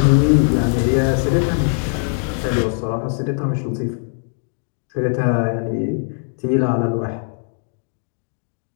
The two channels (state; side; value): silent; right; digital silence